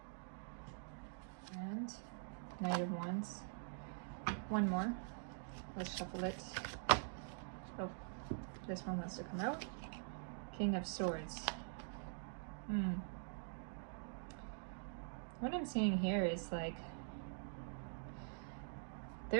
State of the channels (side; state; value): left; silent; digital silence